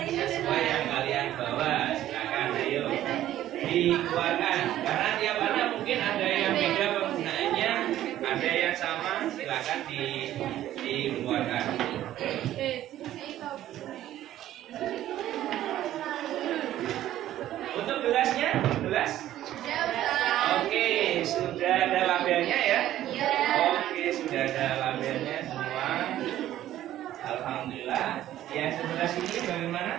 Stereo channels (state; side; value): quieter; left; 13.0 dB